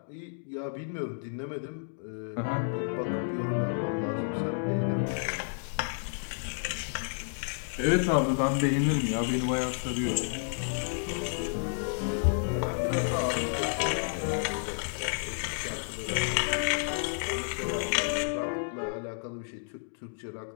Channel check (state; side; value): silent; right; digital silence